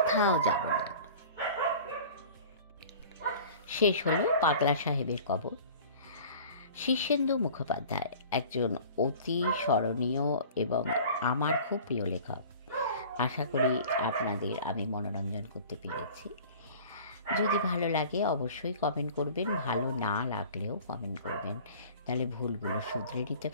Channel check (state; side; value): inverted; both; correlation -0.43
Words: যাব না। শেষ হলো পাগলা সাহেবের কবর। শীর্ষেন্দু মুখোপাধ্যায় একজন অতি স্মরণীয় এবং আমার খুব প্রিয় লেখক। আশা করি আপনাদের আমি মনোরঞ্জন করতে পেরেছি। যদি ভালো লাগে অবশ্যই কমেন্ট করবেন, ভালো না লাগলেও কমেন্ট করবেন, তাহলে ভুলগুলো শুধরে নিতে